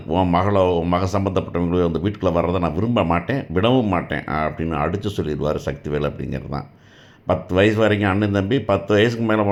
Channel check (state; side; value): identical; both; correlation 1.00